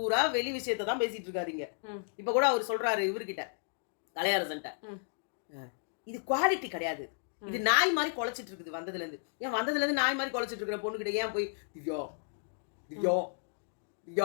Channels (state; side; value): silent; right; digital silence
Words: வெளி விஷயத்த தான் பேசிட்டு இருக்காரு இங்க. ம். இப்ப கூட அவரு சொல்றாரு இவர்கிட்ட, கலையரசன்ட்ட. ம். இது குவாலிட்டி கிடையாது. இது ம். நாய் மாரி கொலைச்சிட்டு இருக்குது வந்ததுலேருந்து. ஏன் வந்ததுலேருந்து நாய் மாரி கொலைச்சிட்டு இருக்கிற பொண்ணுகிட்ட ஏன் போய் திவ்யா, திவ்யா,